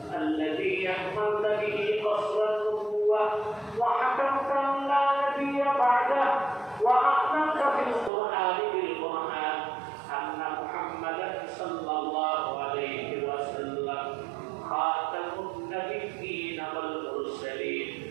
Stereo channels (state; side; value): drops out; left; at 8.1 s